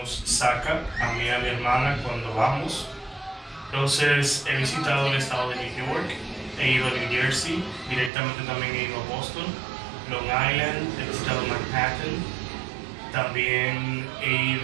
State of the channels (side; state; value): left; drops out; at 8.1 s